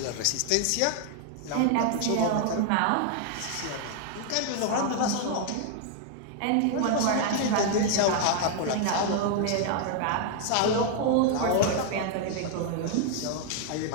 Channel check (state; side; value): different; both; correlation 0.00